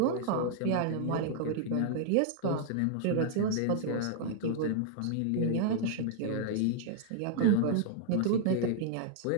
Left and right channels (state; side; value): different; both; correlation -0.01